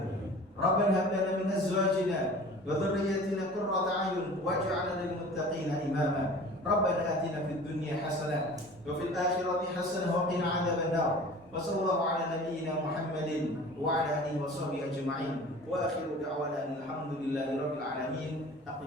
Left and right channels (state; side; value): normal; both; correlation 0.42